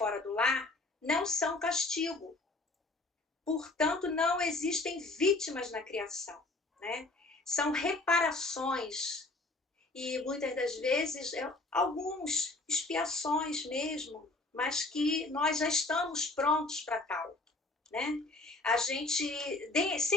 do lar não são castigo. Portanto, não existem vítimas na criação, né? São reparações e muitas das vezes algumas expiações mesmo, mas que nós já estamos prontos para tal, né? A gente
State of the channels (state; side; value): quieter; right; 3.1 dB